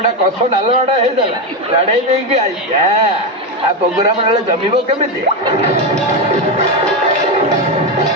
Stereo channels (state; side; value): normal; both; correlation 0.10